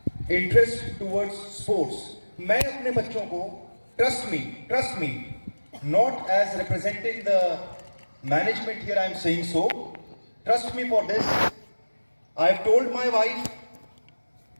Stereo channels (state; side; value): inverted; both; correlation -1.00